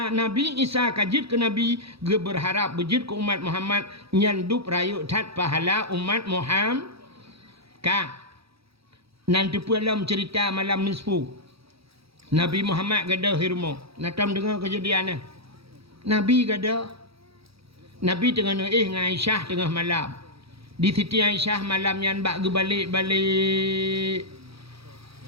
Nabi Isa kajit ke Nabi ge berharap bejit ke umat Muhammad nyandup rayu tat pahala umat Muhammad ka nanti pulam cerita malam nisfu Nabi Muhammad gadah hirmo natam dengar kejadian Nabi gada Nabi tengah dengan Aisyah tengah malam di Siti Aisyah malam yang bak ge balik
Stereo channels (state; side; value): late; left; 0.77 ms